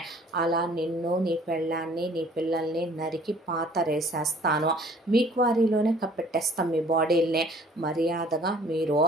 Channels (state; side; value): normal; both; correlation 0.54